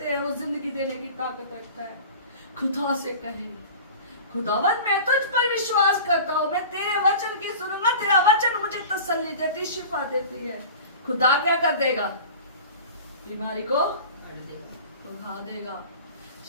हैं, वो जिंदगी देने की ताकत रखता है। खुदा से कहे, खुदावन मैं तुझ पर विश्वास करता हूँ, मैं तेरे वचन की सुनूंगा, तेरा वचन मुझे तसल्ली देती, शिफा देती है। खुदा क्या कर देगा? बीमारी को उठा देगा।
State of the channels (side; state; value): both; inverted; correlation -0.38